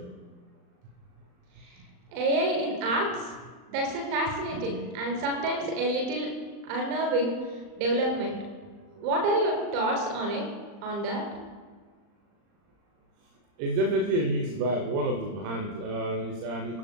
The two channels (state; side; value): late; left; 39 ms